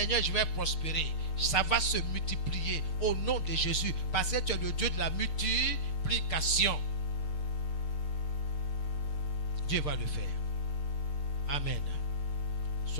je vais prospérer. Ça va se multiplier au nom de Jésus. Parce que tu es le Dieu de la multiplication. Dieu va le faire. Amen.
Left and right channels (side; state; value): right; late; 6.6 ms